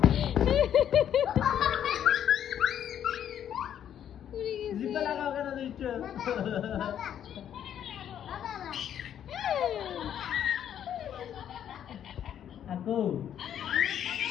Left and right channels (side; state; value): right; quieter; 9.8 dB